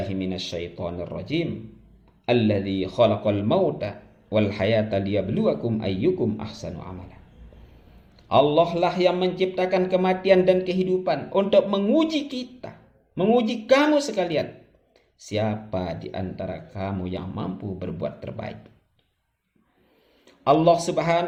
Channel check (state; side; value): identical; both; correlation 1.00